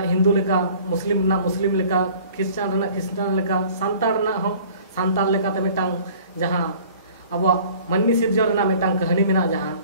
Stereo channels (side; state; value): both; inverted; correlation -0.50